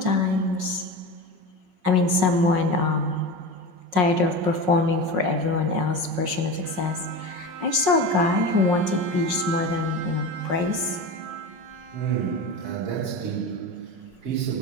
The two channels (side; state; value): left; late; 5.5 ms